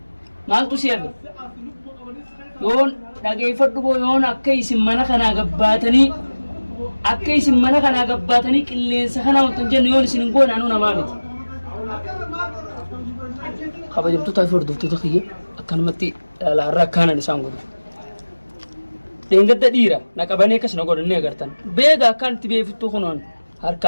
maaltu siyefe yoon dhageeffadhu boo yoon akka isin mana kanaa gabbaatanii qilleensa kanaa wantan jennu yoon isin hin goone anuu namaa miti kabajamtootaa fi hordoftoota kiyya akkanumatti laarraa akkaanan isaan godhu deengadda dhiira na qabanii akkas na godhanii agartan beega akkaan itti beefittuu kunoon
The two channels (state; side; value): inverted; both; correlation -1.00